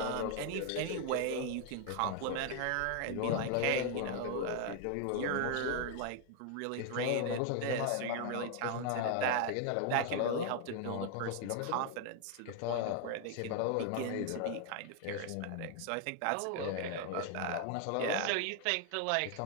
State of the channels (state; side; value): different; both; correlation 0.00